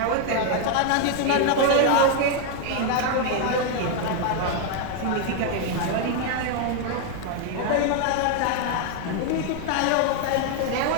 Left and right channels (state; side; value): different; both; correlation 0.00